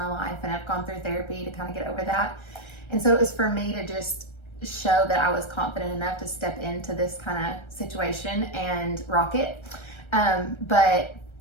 life, and I've gone through therapy to kind of get over that. And so it was for me to just show that I was confident enough to step into this kind of situation and rock it. But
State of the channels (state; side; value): late; right; 1.3 ms